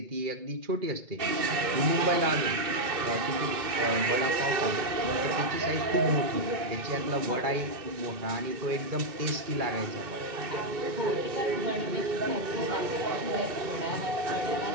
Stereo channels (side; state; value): left; late; 2.2 ms